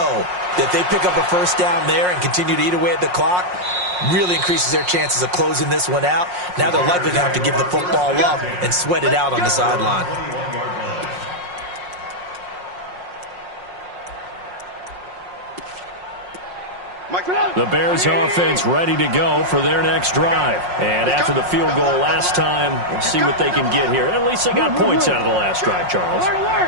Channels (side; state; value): left; late; 5.5 ms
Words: that if they pick up a first down there and continue to eat away at the clock, really increases their chances of closing this one out. Now they're likely to have to give the football up and sweat it out on the sideline. The Bears offense ready to go for their next drive. And after the field goal last time, we'll see what they can get here. At least they got points out of the last drive, Charles.